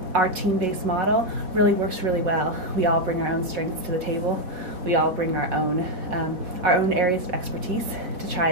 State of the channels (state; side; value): late; left; 4.1 ms